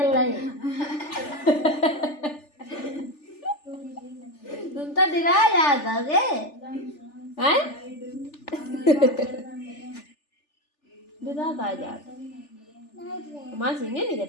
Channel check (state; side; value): late; right; 3.4 ms